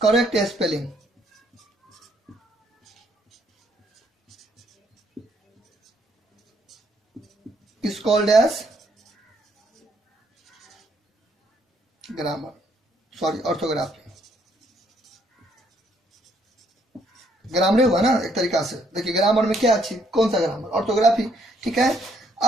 correct spelling is called as grammar, sorry orthography. Grammar हुआ ना एक तरीका से। देखिए ग्रामर में क्या अच्छी, कौन सा ग्रामर? ऑर्थोग्राफी। ठीक है,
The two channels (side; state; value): both; normal; correlation 0.69